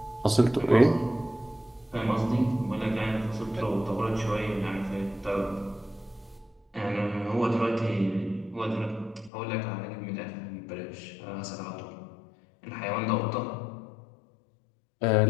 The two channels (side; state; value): right; drops out; at 9.3 s